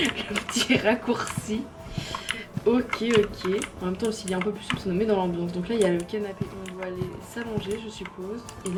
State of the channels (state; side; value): identical; both; correlation 1.00